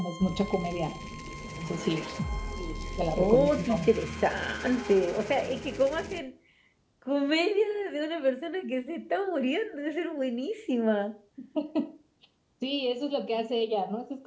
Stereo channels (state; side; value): identical; both; correlation 1.00